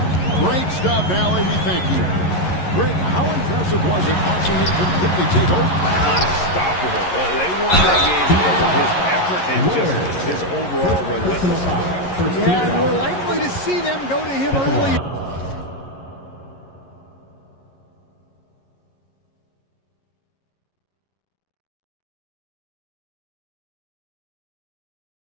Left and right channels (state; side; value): late; right; 11 ms